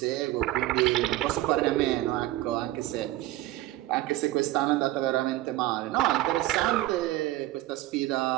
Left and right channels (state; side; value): quieter; left; 16.0 dB